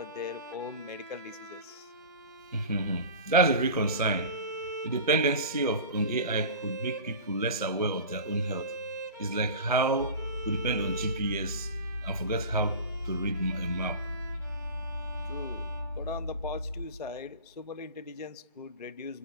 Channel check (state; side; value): inverted; both; correlation -0.33